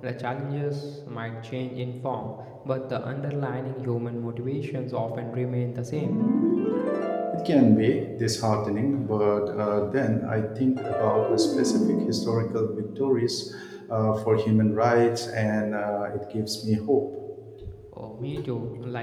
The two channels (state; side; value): identical; both; correlation 1.00